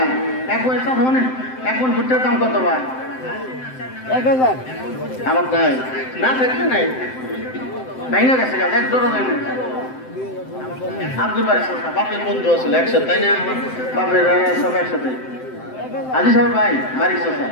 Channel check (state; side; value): late; right; 7.8 ms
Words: এক মন ভুট্টার দাম কত ভাই? 1000। আমার নাই, না থাকলে নাই, ভেঙে গেছে গাছ, এক জোড়া দেয় না। আব্দুল বাড়ি বাপের বন্ধু আসলে একসাথে, তাই না? বাপের সব একসাথে। আজি সাহেব ভাই বাড়ির চোষা,